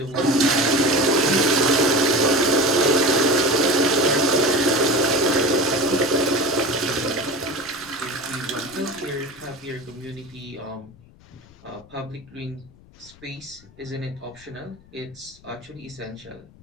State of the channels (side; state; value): left; noise; rumble, 25 dB below the sound